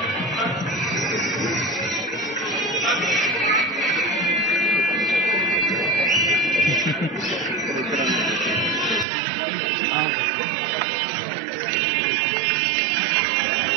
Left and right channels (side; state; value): left; drops out; at 9.1 s